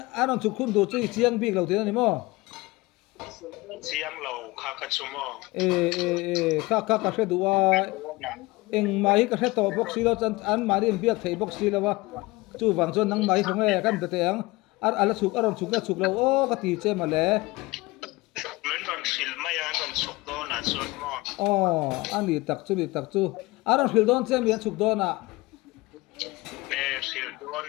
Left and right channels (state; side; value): quieter; right; 21.8 dB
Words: aron chu khun du chu chiang bik lo te ani mo chiang lo kha ka chu mo kha hre du wa eng mai ka hre to box si lo chan an mari em biak thei box si lo wa chu wang chuan nang mai khong e kan te ang ala chuk aron chuk lo o ka ti che ma le men non sil mai an non chuk do na chuan mo ani tak chu aron hil don che mi an chuk do na sil do